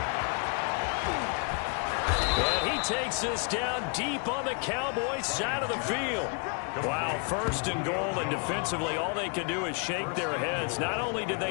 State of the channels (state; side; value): quieter; right; 38.5 dB